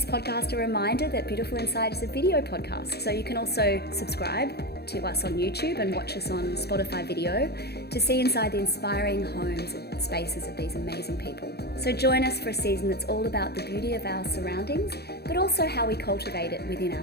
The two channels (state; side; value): late; right; 0.47 ms